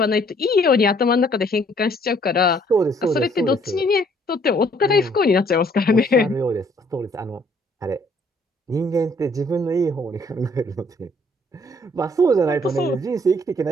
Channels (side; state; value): both; normal; correlation 0.62